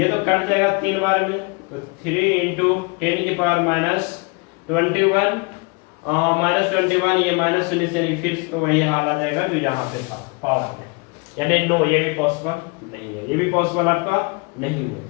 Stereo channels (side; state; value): right; quieter; 30.1 dB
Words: तो कट जाएगा 3 बार में, तो 3 × 10⁻21 -21 ये -19 यानी फिर तो वही हाल आ जाएगा जो यहाँ पे था पावर में, यानी नो, ये भी पॉसिबल नहीं है, ये भी पॉसिबल आपका नहीं है।